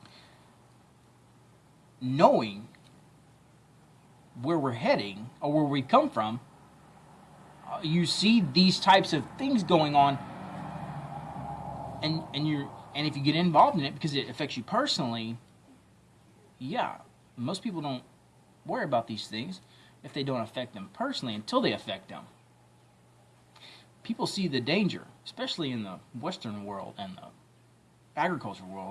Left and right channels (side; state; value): both; identical; correlation 1.00